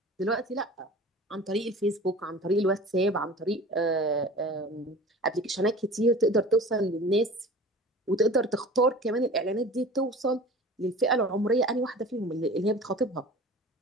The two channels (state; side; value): normal; both; correlation 0.39